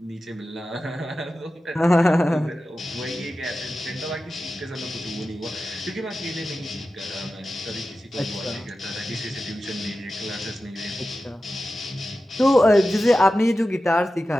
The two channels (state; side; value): normal; both; correlation 0.93